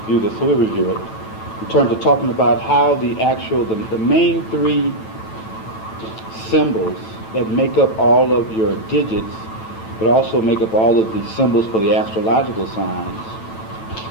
this, so we'll review it. In terms of talking about how the main 3 symbols that make up all of your digits, but also make up all of the symbols for the astrological signs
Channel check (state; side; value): late; right; 9.1 ms